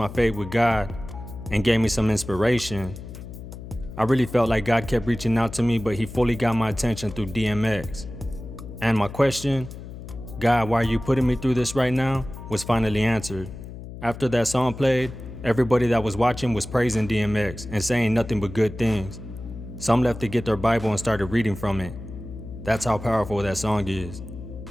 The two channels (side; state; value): left; noise; hum, 12 dB below the sound